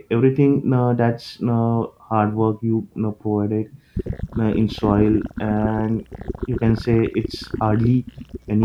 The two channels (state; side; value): identical; both; correlation 1.00